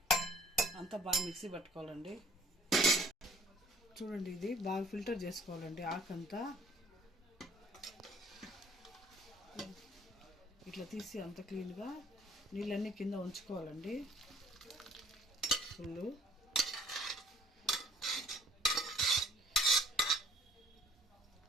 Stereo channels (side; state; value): both; normal; correlation 0.57